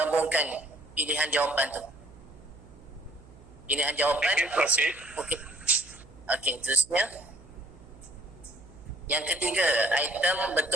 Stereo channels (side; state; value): right; noise; hum, 22 dB below the sound